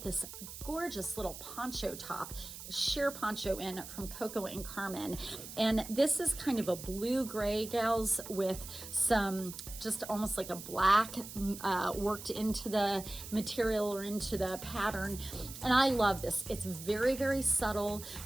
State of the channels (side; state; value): right; noise; hiss, 12 dB below the sound